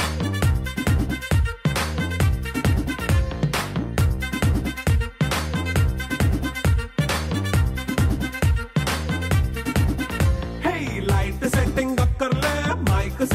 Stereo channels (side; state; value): both; identical; correlation 1.00